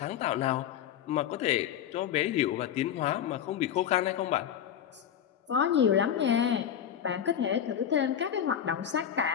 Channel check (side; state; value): right; quieter; 9.4 dB